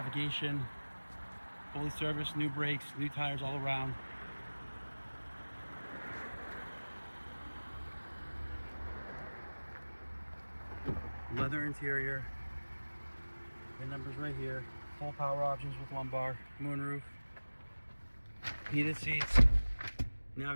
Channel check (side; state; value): both; inverted; correlation -1.00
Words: fully serviced, new brakes, new tires all around. Leather interior, VIN numbers right here, full power options with lumbar, moonroof, heated seats,